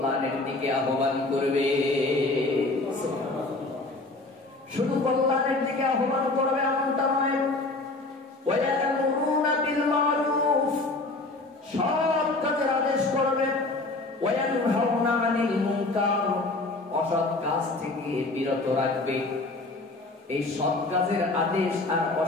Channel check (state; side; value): quieter; right; 3.1 dB